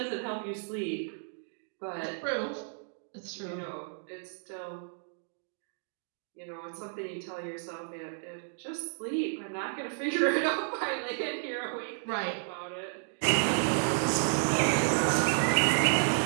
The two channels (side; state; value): left; silent; digital silence